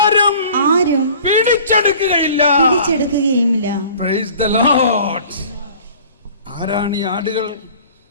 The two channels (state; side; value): inverted; both; correlation -0.47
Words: പിടിച്ചെടുക്കുകയില്ല. Praise the Lord. ആരാണ് ഈ ആടുകൾ?